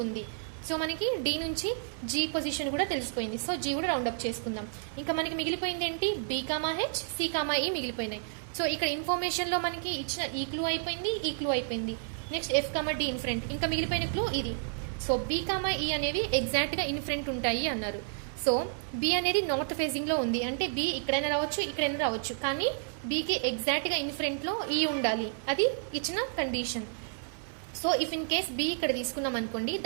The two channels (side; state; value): left; silent; 57 dB below the other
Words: ఉంది. సో మనకి డి నుంచి జీ పొజిషన్ కూడా తెలిసిపోయింది. సో జీ కూడా రౌండ్ అప్ చేసుకుందాం. ఇంకా మనకి మిగిలిపోయింది ఏంటి, B comma H, C comma E మిగిలిపోయినాయి. సో ఇక్కడ ఇన్ఫర్మేషన్లో మనకి ఇచ్చిన ఈ క్లూ అయిపోయింది, ఈ క్లూ అయిపోయింది. Next F comma D in front, ఇంకా మిగిలిపోయిన క్లూ ఇది. సో బీ కామా ఈ అనేవి ఎగ్జాక్ట్గా ఇన్ ఫ్రంట్ ఉంటాయి అన్నారు. సో బి అనేది నార్త్ ఫేజింగ్లో ఉంది అంటే బి ఇక్కడైనా రావచ్చు, ఇక్కడైనా రావచ్చు, కానీ బీకి ఎగ్జాక్ట్గా ఇన్ ఫ్రంట్లో ఈ ఉండాలి, అది ఇచ్చిన condition. So if in case B ఇక్కడ తీసుకున్నాం అనుకోండి,